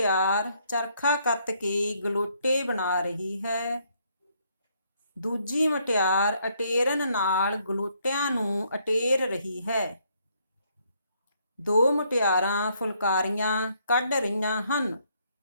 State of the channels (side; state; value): both; inverted; correlation -0.70